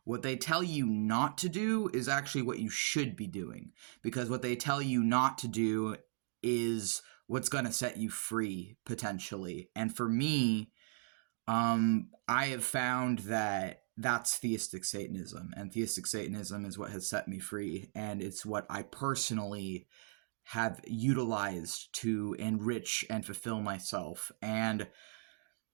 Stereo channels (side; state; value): left; silent; digital silence